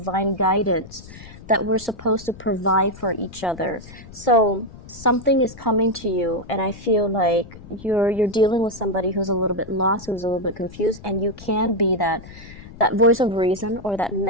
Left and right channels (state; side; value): noise; left; rumble, 17 dB below the sound